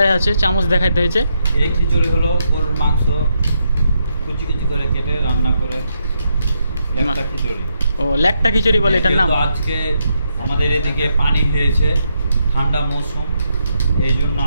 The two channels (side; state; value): both; inverted; correlation -0.80